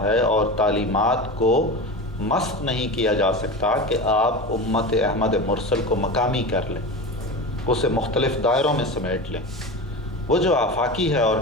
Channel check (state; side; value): normal; both; correlation 0.27